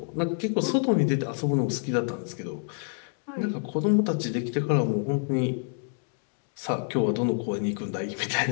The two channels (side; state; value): right; silent; 58 dB below the other